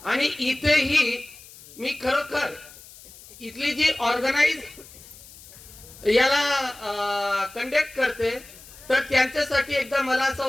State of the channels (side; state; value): left; noise; hiss, 20 dB below the sound